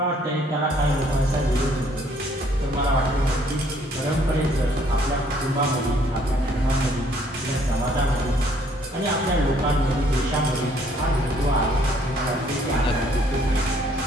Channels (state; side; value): normal; both; correlation 0.63